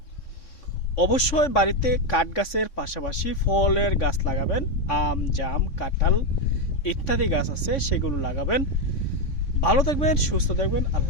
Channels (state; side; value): late; right; 3.5 ms